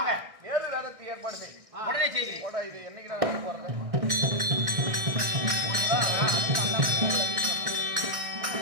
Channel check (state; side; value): late; left; 1.6 ms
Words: வேறு ரதத்தை ஏற்பாடு செய். உடனே செய்கிறேன். போடா, இது என்னைக்கு நான் போறேன்.